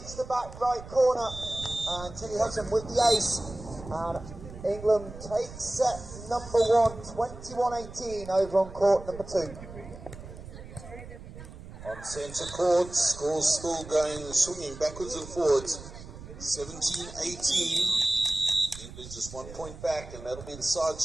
the back right corner, and Tilly Hudson with the ace. And England takes set number 1, 21-18 over on court number 2. On centre court, scores still going, swinging backwards and forwards. 17-18. England just 1 point back, and that'll be the side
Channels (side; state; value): right; noise; rumble, 14 dB below the sound